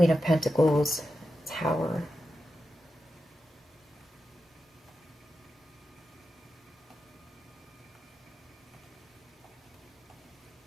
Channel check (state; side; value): normal; both; correlation 0.89